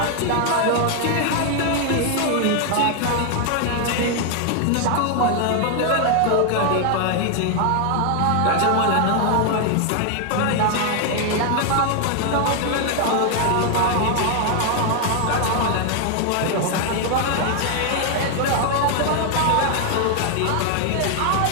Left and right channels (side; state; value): both; different; correlation 0.00